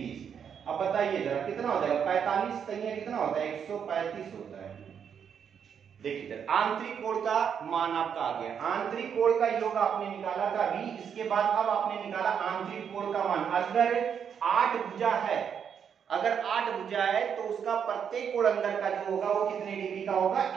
अब बताइए जरा कितना हो जाएगा, 45 तैयार कितना होता है, 135 होता है। देखिए आंतरिक कोण का मान आपका आ गया, आंतरिक कोण का योग आपने निकाला था अभी। इसके बाद अब आपने निकाला आंतरिक कोण का मान। अगर 8 भुजा है, अगर 8 भुजा है तो उसका प्रत्येक कोण अंदर का जो होगा वो कितने डिग्री का होगा,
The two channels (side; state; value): left; quieter; 7.6 dB